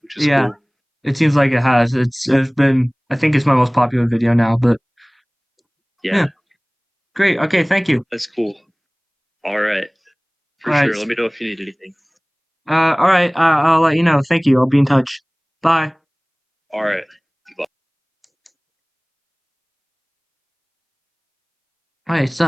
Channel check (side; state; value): both; identical; correlation 1.00